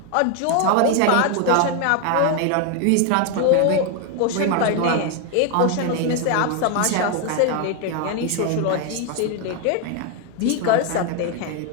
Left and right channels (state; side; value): different; both; correlation 0.01